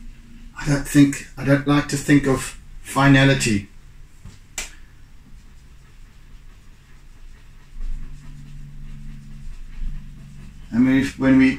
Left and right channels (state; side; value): identical; both; correlation 1.00